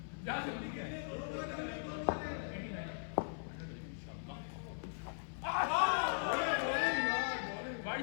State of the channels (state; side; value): silent; right; 51 dB below the other